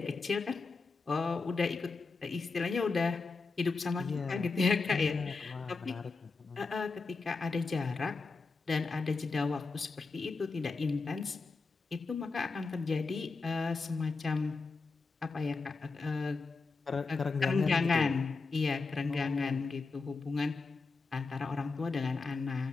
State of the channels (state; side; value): quieter; right; 4.1 dB